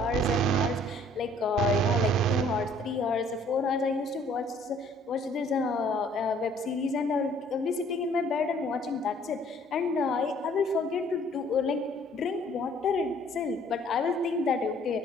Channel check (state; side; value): normal; both; correlation 0.58